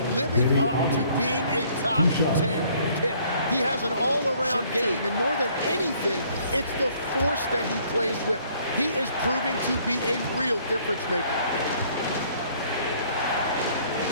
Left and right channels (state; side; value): inverted; both; correlation -0.61